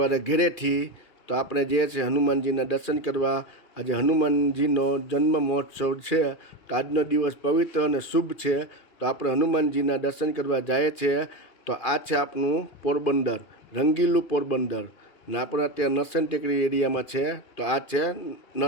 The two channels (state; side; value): late; right; 2.4 ms